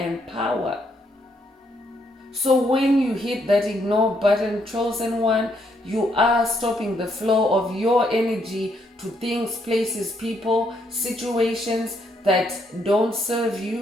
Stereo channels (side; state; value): both; normal; correlation 0.74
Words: power. So when you hit that ignore button, chosen one, you are stopping the flow of your energy to things, places, people, situations that don't serve